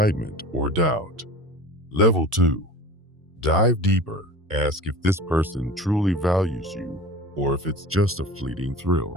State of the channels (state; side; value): normal; both; correlation 0.37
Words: or doubt. Level 2. Dive deeper. Ask if this person truly values you or if it's just a fleeting thrill.